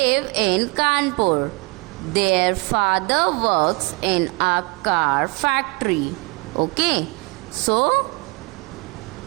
in Kanpur. Their father works in a car factory. Okay. So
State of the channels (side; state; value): left; quieter; 26.5 dB